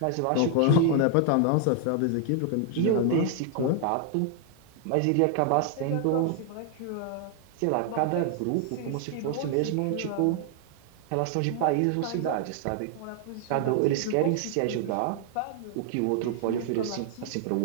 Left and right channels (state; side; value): different; both; correlation 0.00